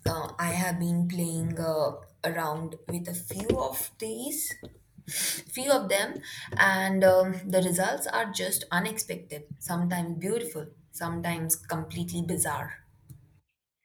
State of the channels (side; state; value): both; identical; correlation 1.00